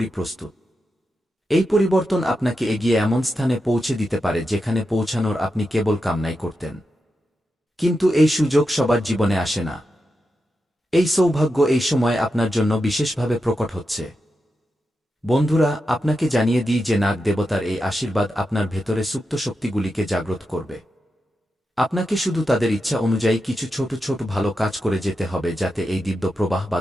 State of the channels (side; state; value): both; normal; correlation 0.88